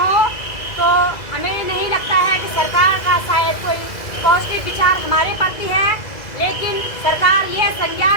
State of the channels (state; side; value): late; right; 2.0 ms